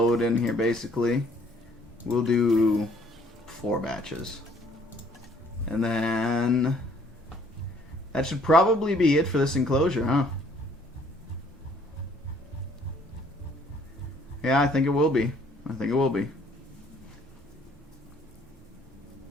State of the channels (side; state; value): both; normal; correlation 0.61